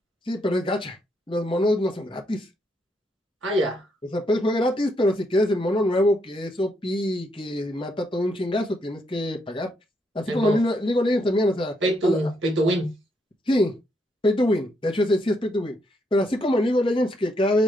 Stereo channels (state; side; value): normal; both; correlation 0.77